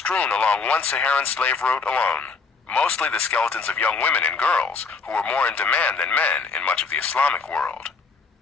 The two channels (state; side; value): quieter; right; 4.6 dB